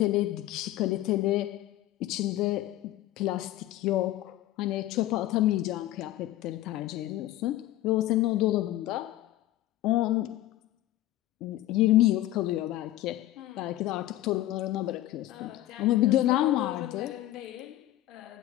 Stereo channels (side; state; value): right; quieter; 15.0 dB